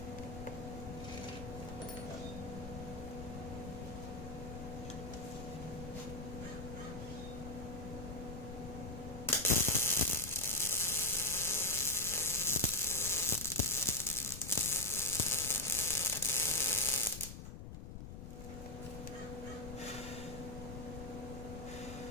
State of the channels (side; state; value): left; noise; rumble, 9 dB below the sound